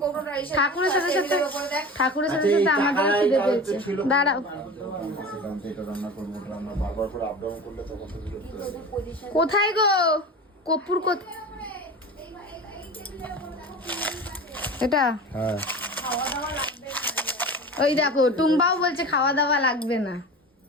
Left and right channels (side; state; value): both; normal; correlation 0.33